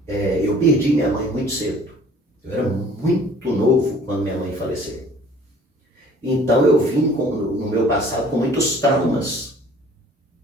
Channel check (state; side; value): normal; both; correlation 0.52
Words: eu perdi minha mãe muito cedo. Eu era muito novo quando minha mãe faleceu. Então eu vim no meu passado com muitos traumas,